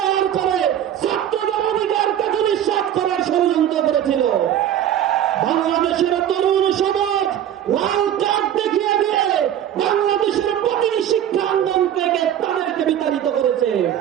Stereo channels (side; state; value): left; quieter; 10.6 dB